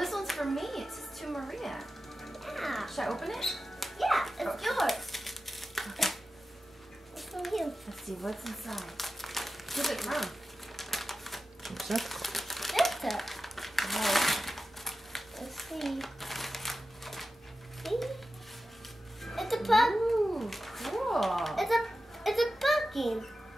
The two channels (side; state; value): both; normal; correlation 0.93